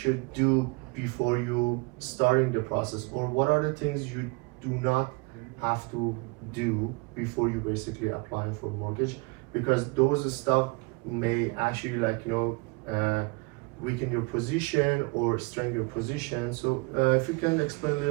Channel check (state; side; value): quieter; left; 27.8 dB